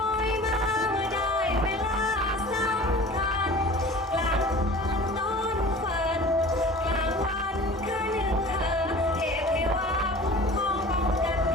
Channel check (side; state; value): both; normal; correlation 0.42